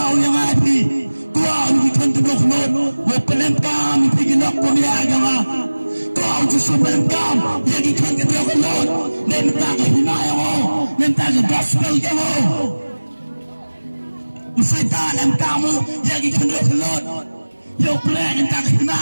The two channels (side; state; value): both; inverted; correlation -1.00